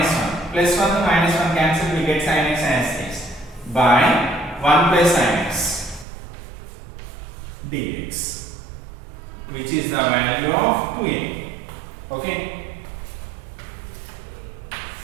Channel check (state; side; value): drops out; left; at 6.1 s